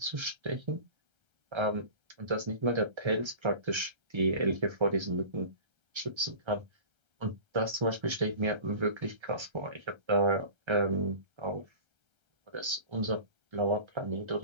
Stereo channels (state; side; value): late; left; 1.3 ms